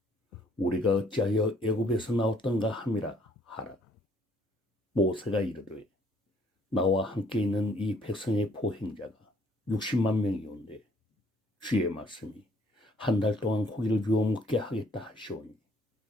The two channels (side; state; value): both; normal; correlation 0.63